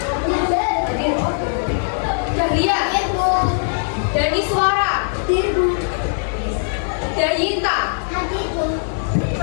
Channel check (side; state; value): right; silent; digital silence